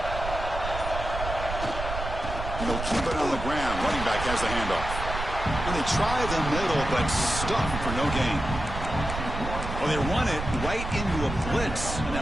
They'll keep it on the ground. Running back has the handoff. And they try the middle, but stuffed for no gain. Well, they run it right into a blitz, and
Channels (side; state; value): right; noise; rumble, 6 dB below the sound